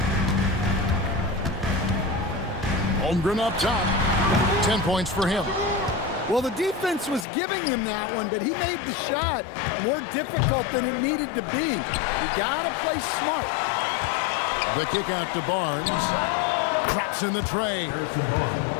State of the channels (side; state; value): right; drops out; at 7.2 s